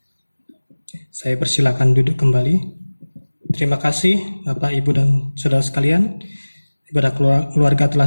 Saya persilakan duduk kembali. Terima kasih Bapak, Ibu, dan Saudara sekalian. Ibadah keluarga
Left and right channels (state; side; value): inverted; both; correlation -1.00